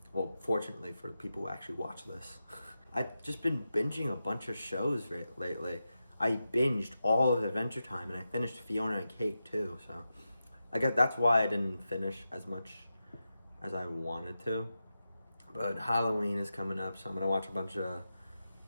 Well, fortunately for people who actually watch this. I've just been binging a bunch of shows lately. I binged all of Adventure Time, and I finished Fiona and Cake too, so I guess that's why I didn't finish as much as I wanted to. But Halloween is coming up, so I'm gonna watch a bunch of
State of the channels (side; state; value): both; inverted; correlation -0.91